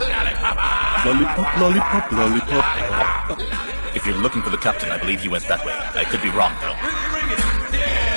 Lollipop, lollipop, lollipop. If you're looking for the captain, I believe he went that way. I could be wrong, though.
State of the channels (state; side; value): inverted; both; correlation -1.00